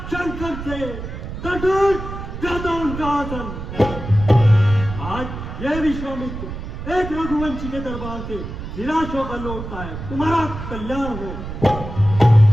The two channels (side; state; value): right; noise; rumble, 8 dB below the sound